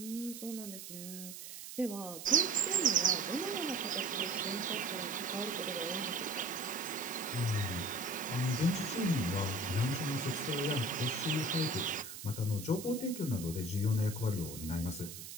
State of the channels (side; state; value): right; noise; hiss, 11 dB below the sound